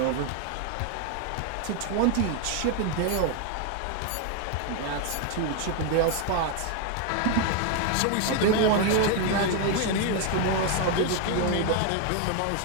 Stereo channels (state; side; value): different; both; correlation 0.01